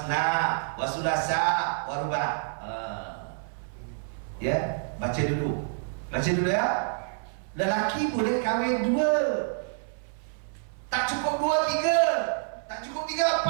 wa sulasa wa ruba. Ya, baca dulu ya. Lelaki boleh kahwin 2, tak cukup 2, 3, tak cukup 3,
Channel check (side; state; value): left; silent; 56 dB below the other